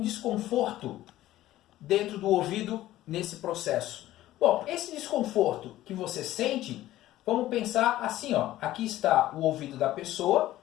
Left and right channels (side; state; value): right; quieter; 14.8 dB